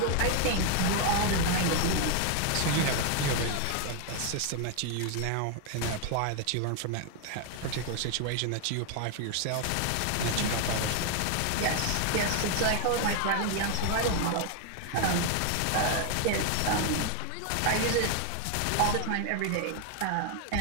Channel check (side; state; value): both; different; correlation 0.00